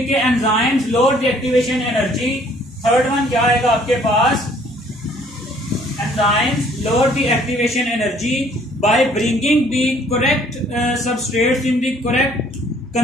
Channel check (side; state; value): both; normal; correlation 0.60